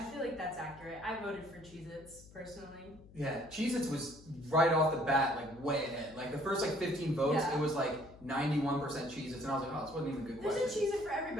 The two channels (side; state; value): left; noise; hum, 21 dB below the sound